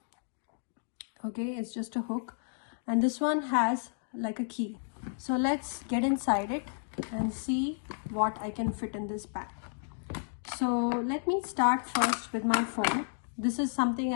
Okay, it's just a hook. And this one has like a key. So let's get inside it and see what I can fit in this bag. So let me start first with my phone. This is something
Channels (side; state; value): right; silent; digital silence